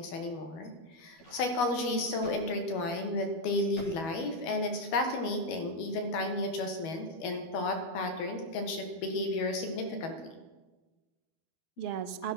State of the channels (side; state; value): right; late; 12 ms